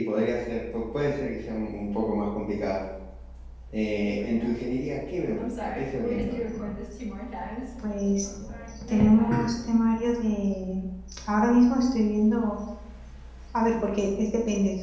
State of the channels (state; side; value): identical; both; correlation 1.00